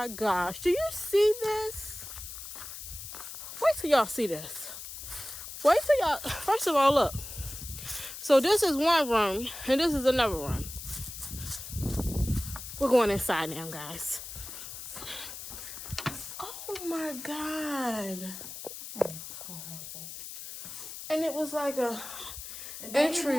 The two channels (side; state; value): left; noise; hiss, 10 dB below the sound